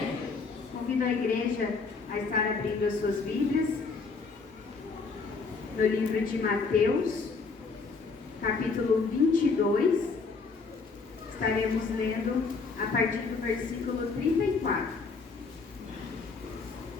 Convido a igreja a estar abrindo as suas Bíblias no livro de Mateus, capítulo 22. Estaremos lendo a partir do versículo 34.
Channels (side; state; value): right; quieter; 4.5 dB